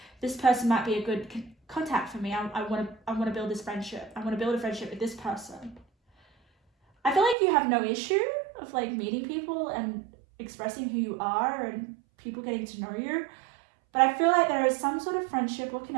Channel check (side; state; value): left; drops out; at 7.4 s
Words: this person might be a good contact for me. I want to build this friendship. I want to build a friendship with this person. I feel like you have no issue of like meeting people and expressing who you are and people getting to know you. But I feel like there is some sort of friendship or